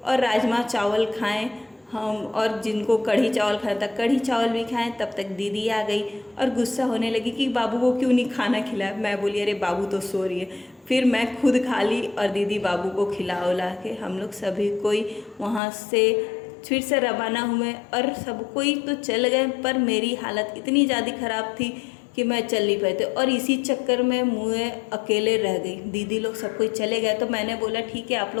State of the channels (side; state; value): right; drops out; at 15.6 s